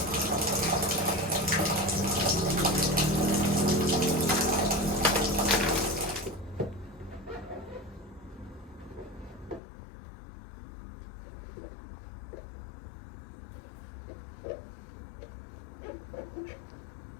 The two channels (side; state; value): right; drops out; at 9.6 s